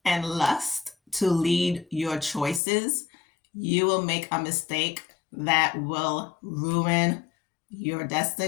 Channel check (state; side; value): drops out; right; at 2.6 s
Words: and lust to lead your choices, you will make a mistake that will ruin your